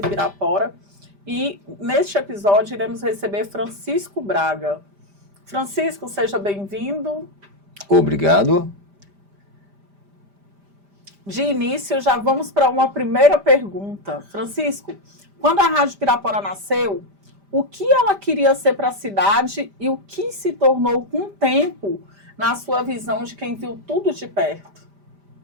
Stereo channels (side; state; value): left; late; 5.0 ms